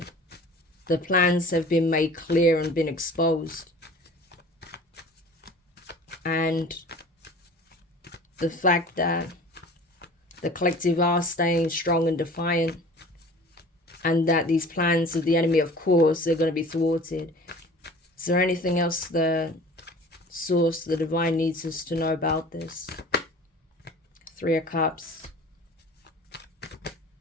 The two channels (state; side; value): normal; both; correlation 0.44